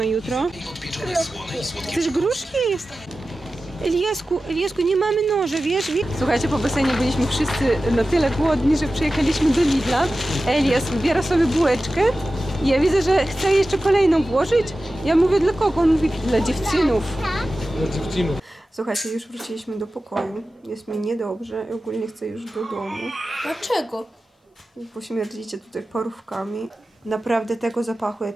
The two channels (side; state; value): both; normal; correlation 0.94